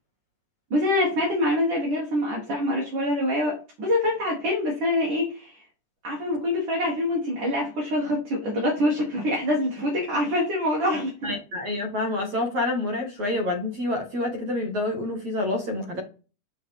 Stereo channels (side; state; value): left; late; 10 ms